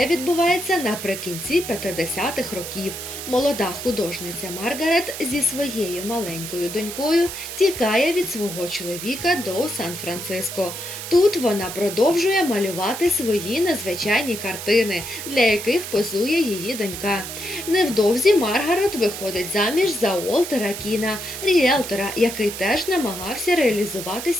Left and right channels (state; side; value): noise; right; hiss, 8 dB below the sound